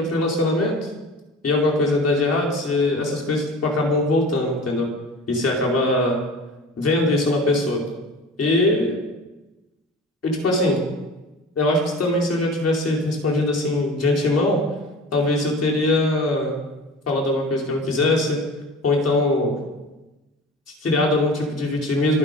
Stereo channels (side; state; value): both; normal; correlation 0.37